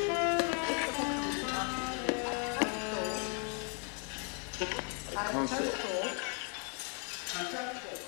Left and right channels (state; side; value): quieter; right; 39.4 dB